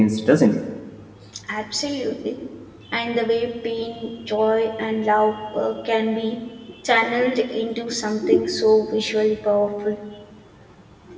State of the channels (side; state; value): both; identical; correlation 1.00